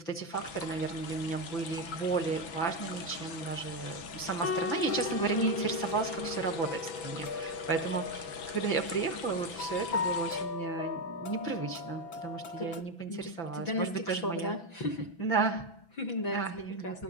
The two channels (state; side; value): late; right; 6.0 ms